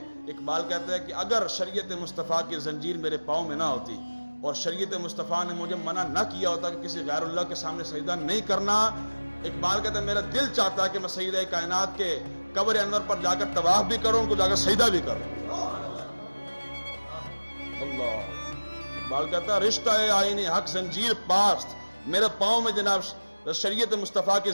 اقبال کہتا ہے کہ اگر شریعت مصطفیٰ کی زنجیر میرے پاؤں میں نہ ہوتی اور شریعت مصطفیٰ نے مجھے منع نہ کیا ہوتا کہ کسی غیر اللہ کے سامنے سجدہ نہیں کرنا، اقبال کہتا ہے میرا دل چاہتا ہے کہ میں سیدہ کائنات کے قبر انور پر جا کر طواف بھی کروں، ان کو جا کر سجدہ بھی کروں. اللہ اقبال کہتا ہے رشتہ آئین حق زنجیر پاست، میرے پاؤں میں جناب شریعت مصطفیٰ کی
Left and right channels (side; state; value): both; inverted; correlation -1.00